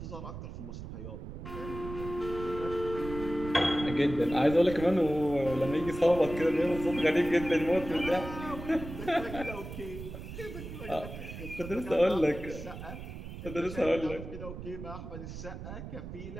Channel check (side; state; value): right; noise; rumble, 10 dB below the sound